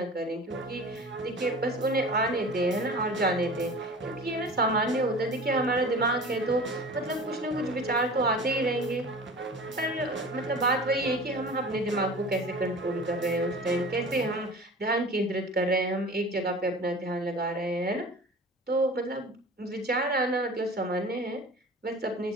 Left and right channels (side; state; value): both; normal; correlation 0.39